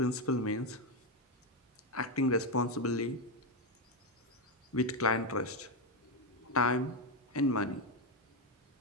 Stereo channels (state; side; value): normal; both; correlation 0.07